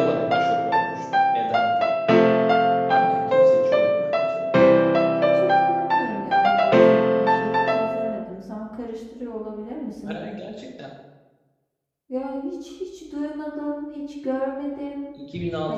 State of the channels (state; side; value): identical; both; correlation 1.00